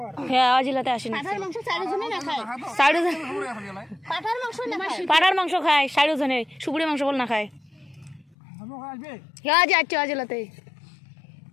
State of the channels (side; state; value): right; drops out; at 8.3 s